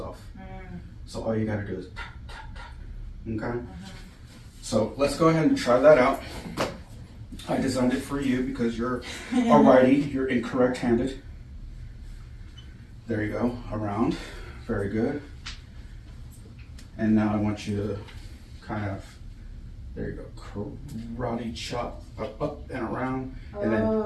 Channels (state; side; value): identical; both; correlation 1.00